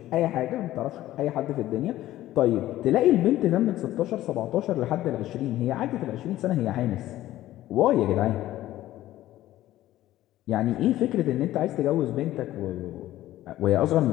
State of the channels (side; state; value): right; quieter; 14.6 dB